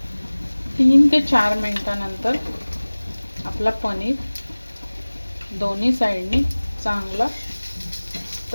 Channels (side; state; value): both; inverted; correlation -1.00